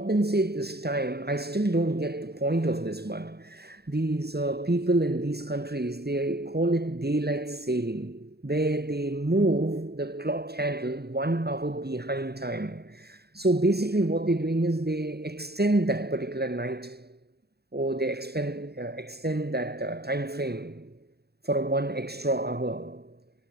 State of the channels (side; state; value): left; late; 0.47 ms